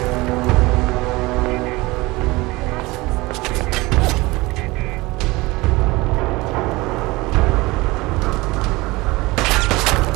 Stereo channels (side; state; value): left; quieter; 21.9 dB